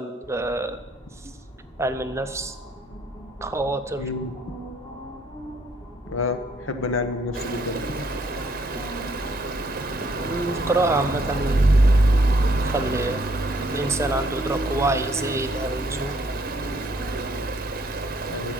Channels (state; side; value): normal; both; correlation 0.67